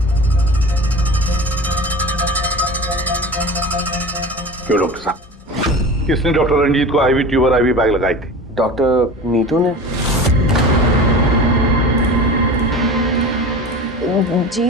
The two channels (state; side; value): normal; both; correlation 0.34